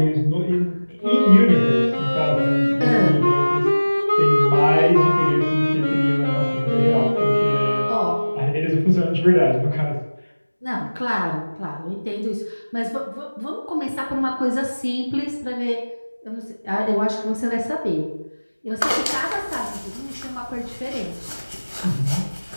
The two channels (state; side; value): inverted; both; correlation -1.00